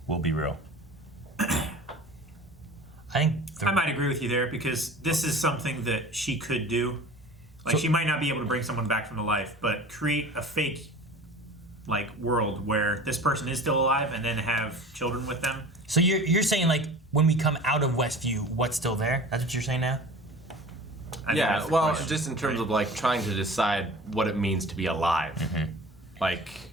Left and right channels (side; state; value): both; normal; correlation 0.40